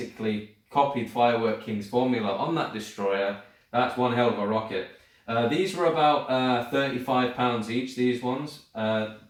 copied Firework King's formula on that destroyer, that's one hell of a rocket. These were about £35 each, these ones.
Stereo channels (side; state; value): both; identical; correlation 1.00